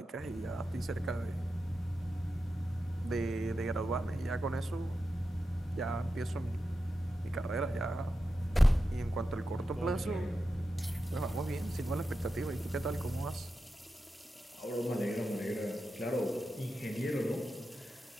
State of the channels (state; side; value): normal; both; correlation 0.90